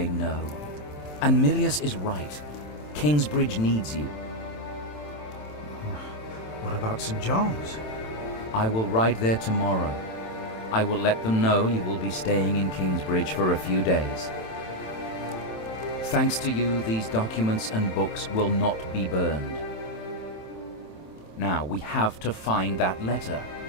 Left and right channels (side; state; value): right; late; 27 ms